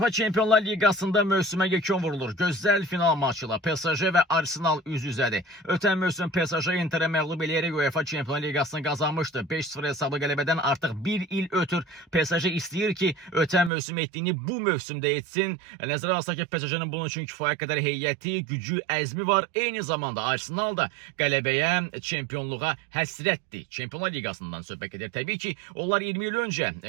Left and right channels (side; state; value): left; drops out; at 13.7 s